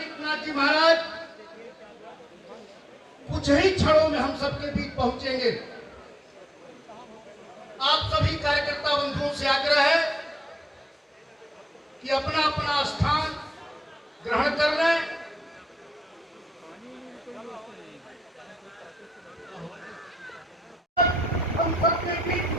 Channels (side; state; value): both; normal; correlation 0.86